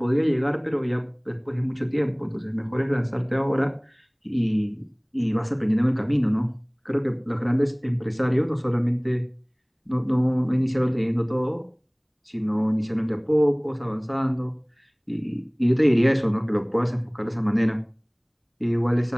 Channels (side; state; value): both; identical; correlation 1.00